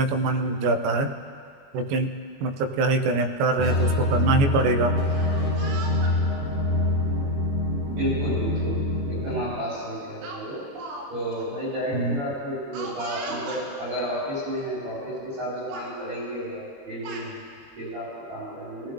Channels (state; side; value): late; left; 22 ms